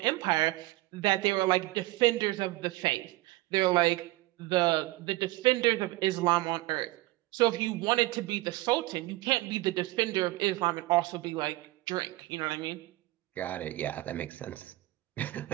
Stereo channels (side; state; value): left; quieter; 18.9 dB